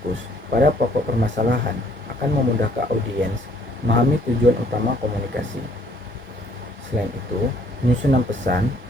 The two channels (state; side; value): normal; both; correlation 0.62